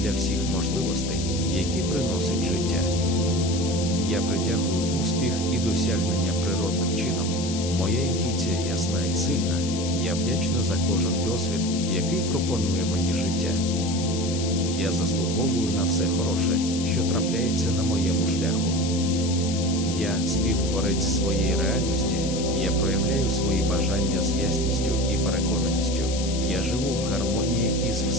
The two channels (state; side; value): noise; left; hiss, 8 dB below the sound